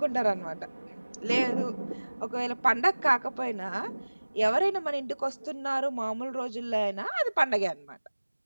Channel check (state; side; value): inverted; both; correlation -1.00